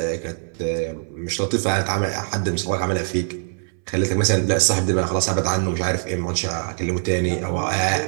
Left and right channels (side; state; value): left; silent; 64 dB below the other